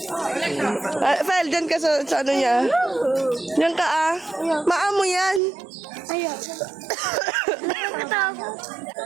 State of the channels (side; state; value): left; drops out; at 5.4 s